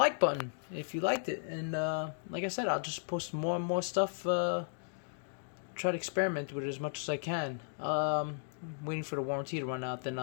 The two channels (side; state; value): right; silent; digital silence